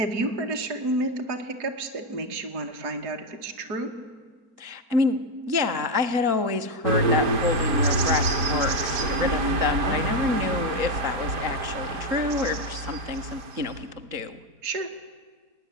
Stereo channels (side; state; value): left; late; 4.4 ms